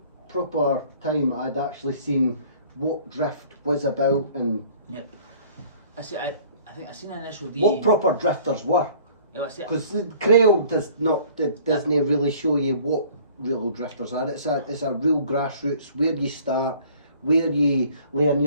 proper time I'd actually seen what drift was about and Yep. I think I seen an initial D. what proper drifters were. Yeah, I see. Because the Trail doesn't really show you what real drifters are. It's a real grassroots, where you start, where you learn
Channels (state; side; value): inverted; both; correlation -0.52